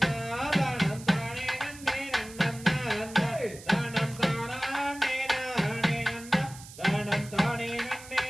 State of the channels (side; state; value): right; noise; hiss, 17 dB below the sound